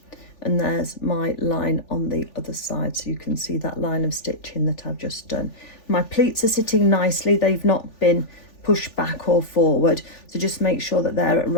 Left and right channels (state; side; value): late; right; 3.4 ms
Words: And there's my line on the other side, so you can see that line of stitching that I've just done. My pleats are sitting nicely, they've not been pushed back or forward, so just make sure that they're at